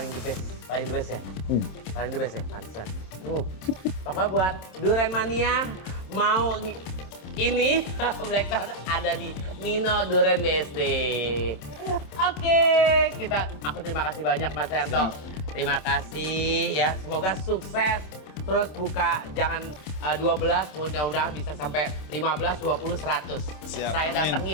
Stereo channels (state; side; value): late; right; 27 ms